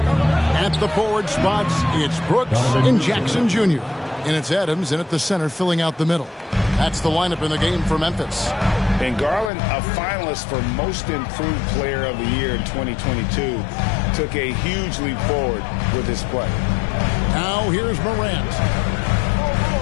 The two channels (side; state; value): right; drops out; at 9.5 s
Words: the forward spots, it's Brooks and Jackson Jr. And it's Adams in at the center filling out the middle. That's the lineup in the game for Memphis. And Garland, a finalist for Most Improved Player of the Year in 2022, took a huge leap forward with his play. Now here's Morant.